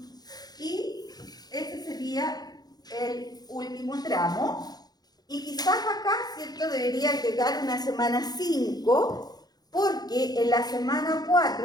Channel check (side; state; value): right; late; 0.19 ms